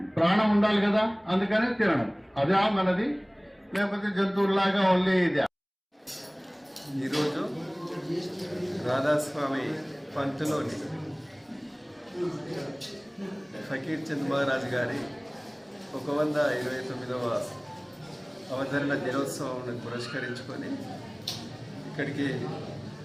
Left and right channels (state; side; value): identical; both; correlation 1.00